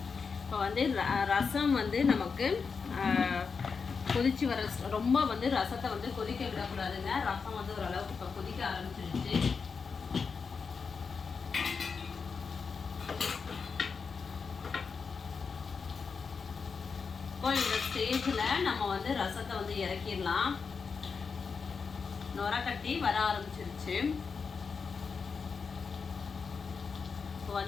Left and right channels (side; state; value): right; quieter; 5.4 dB